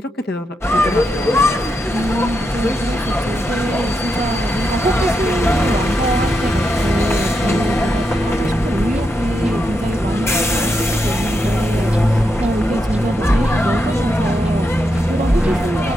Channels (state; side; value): normal; both; correlation 0.84